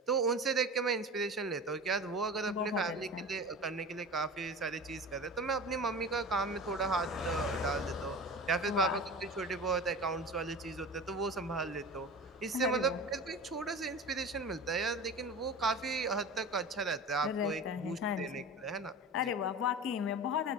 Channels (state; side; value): normal; both; correlation 0.33